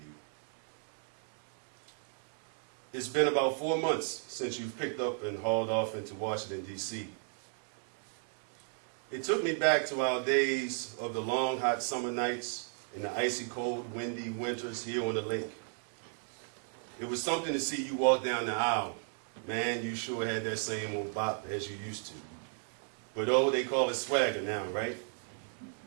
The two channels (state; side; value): silent; left; 55 dB below the other